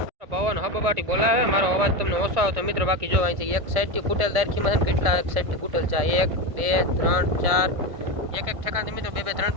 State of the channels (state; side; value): late; left; 1.5 ms